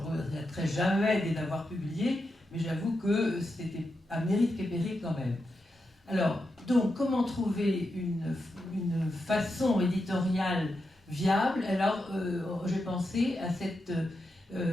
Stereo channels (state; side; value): normal; both; correlation 0.87